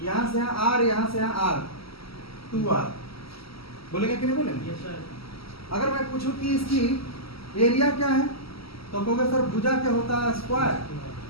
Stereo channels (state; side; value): late; right; 0.75 ms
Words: यहां से यहाँ r, यहां से यहाँ r, 2r। बोलेंगे कि नहीं बोलेंगे? अगर मैं पूछूं कि इसकी एरिया क्या है तो कहोगे सर भुजा क्या होता है? स्क्वायर।